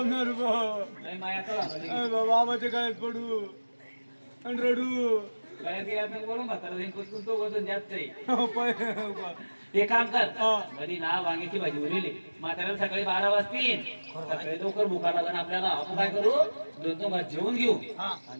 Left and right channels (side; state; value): both; inverted; correlation -1.00